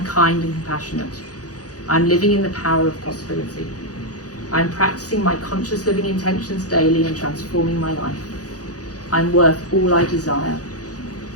kind and compassionate. I am living in the power of possibility. I am practicing my conscious living intentions daily and transforming my life. I am worth all I desire.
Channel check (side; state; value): right; late; 0.67 ms